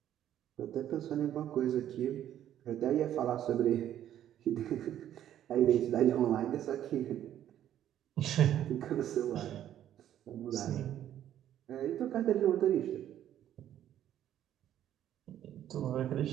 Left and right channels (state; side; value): quieter; left; 11.3 dB